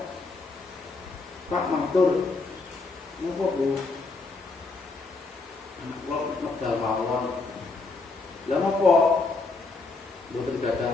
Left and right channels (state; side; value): quieter; right; 3.7 dB